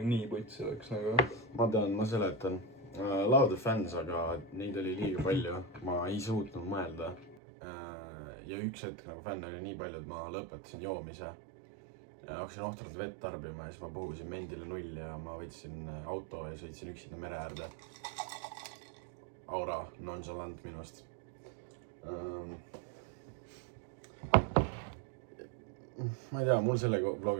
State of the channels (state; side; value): drops out; left; at 7.4 s